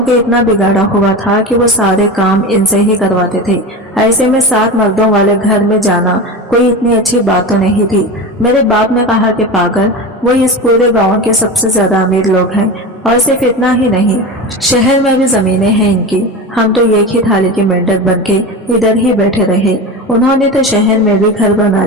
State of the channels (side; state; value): both; normal; correlation 0.26